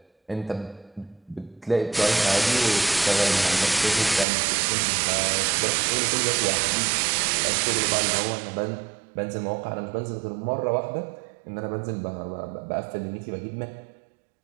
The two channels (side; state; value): left; drops out; at 4.2 s